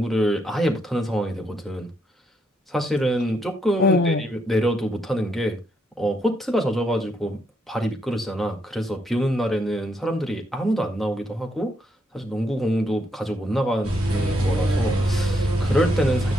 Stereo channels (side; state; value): both; normal; correlation 0.77